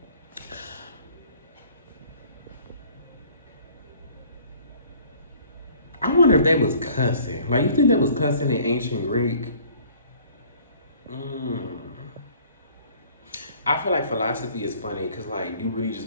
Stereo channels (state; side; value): inverted; both; correlation -0.54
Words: I wonder if they was cussing. Like, you think they was cussing in ancient Greek? Mm. I feel like philosophy is funny because like you really